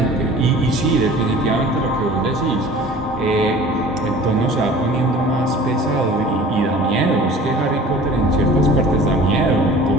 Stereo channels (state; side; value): normal; both; correlation 0.44